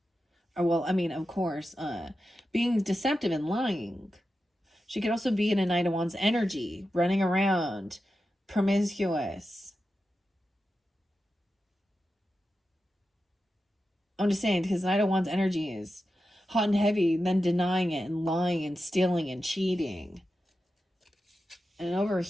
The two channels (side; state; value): both; normal; correlation 0.91